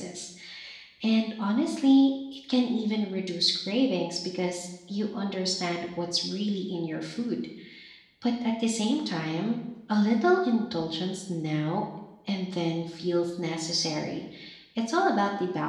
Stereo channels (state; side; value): identical; both; correlation 1.00